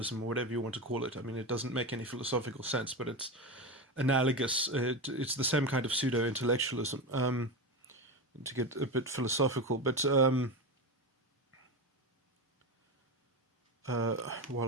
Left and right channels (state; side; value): normal; both; correlation 0.19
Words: or whatever you want to call it. I mean, it doesn't make any philosophical sense, but it's analogous. It's the same kind of pseudo-intellectualism, to get a bit philosophical. But